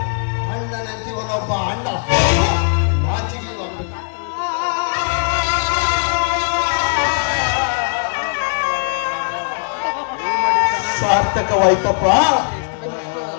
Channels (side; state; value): right; silent; digital silence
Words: ಅಣ್ಣನಂತಿವನೊಬ್ಬ ಅಣ್ಣ ನಾಚಿಗೆ ಸಾರ್ಥಕವಾಯ್ತಪ್ಪ,